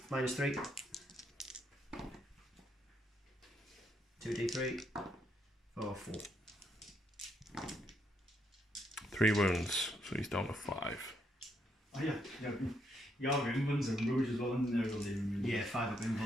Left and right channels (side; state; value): both; normal; correlation 0.76